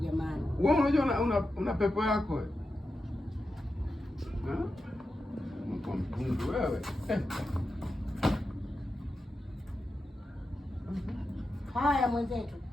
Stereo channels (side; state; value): both; normal; correlation 0.90